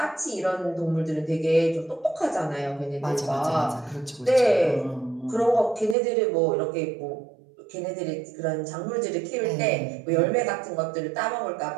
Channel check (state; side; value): drops out; left; at 6.0 s